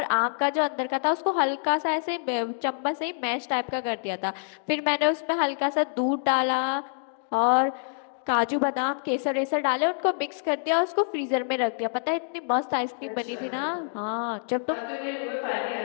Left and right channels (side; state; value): right; silent; digital silence